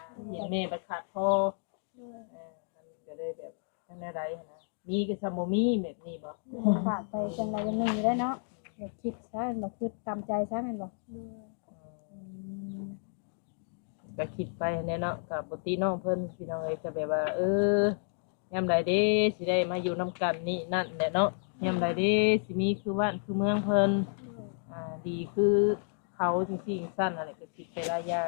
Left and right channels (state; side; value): silent; right; digital silence